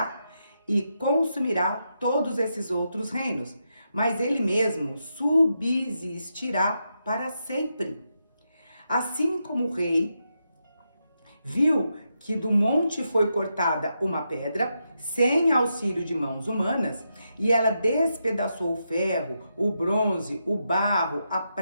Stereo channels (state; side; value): inverted; both; correlation -0.84